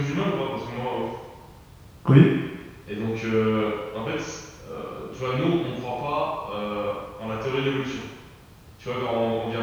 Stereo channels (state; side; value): identical; both; correlation 1.00